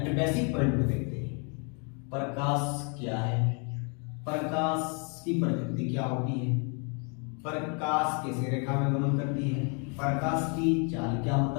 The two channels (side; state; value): right; quieter; 36.7 dB